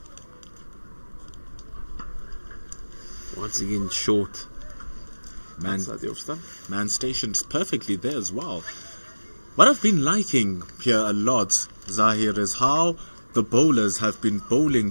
Once again, short. Man stationed perfectly there as well. What I've been liking here a lot, Zahir, is how the bowlers have been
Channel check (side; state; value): both; inverted; correlation -1.00